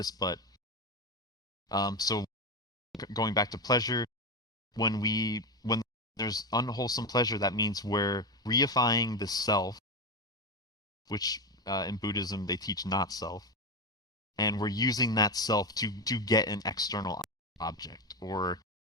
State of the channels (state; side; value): normal; both; correlation 0.15